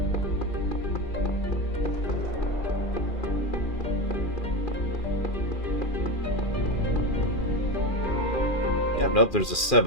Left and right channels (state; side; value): late; right; 2.4 ms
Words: Yeah, nope, there's a